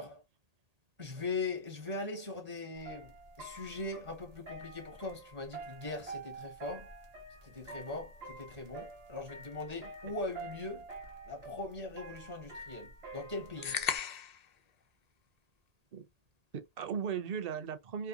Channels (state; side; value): late; left; 1.8 ms